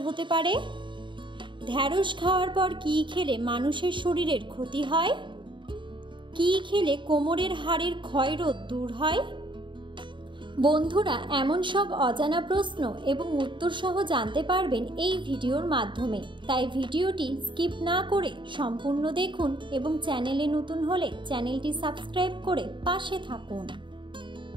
হতে পারে? ঢ্যাঁড়স খাওয়ার পর কি খেলে মানুষের শরীরের ক্ষতি হয়? কি খেলে কোমরের হাড়ের ক্ষয়রোধ দূর হয়? বন্ধুরা, এমন সব অজানা প্রশ্ন এবং উত্তর সহ জানতে পারবেন এই ভিডিওর মাধ্যমে। তাই ভিডিওটি স্কিপ না করে সম্পূর্ণ দেখুন এবং চ্যানেলে নতুন হলে চ্যানেলটি সাবস্ক্রাইব করে পাশে থাকুন।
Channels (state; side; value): late; left; 0.23 ms